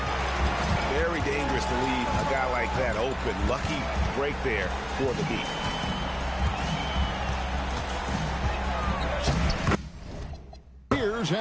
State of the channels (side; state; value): both; identical; correlation 1.00